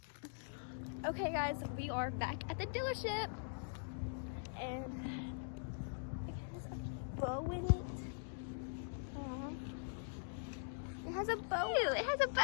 Okay, guys, we are back at the dealership, and it has a bow in it. It has a bow. Ew, it has a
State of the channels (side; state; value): right; silent; digital silence